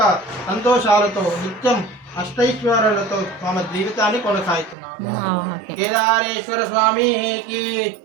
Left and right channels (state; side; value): drops out; left; at 4.8 s